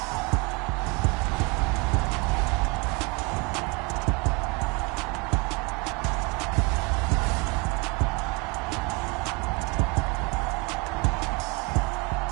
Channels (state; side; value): quieter; left; 29.0 dB